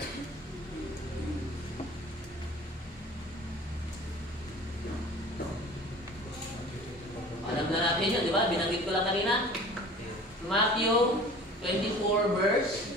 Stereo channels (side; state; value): both; normal; correlation 0.43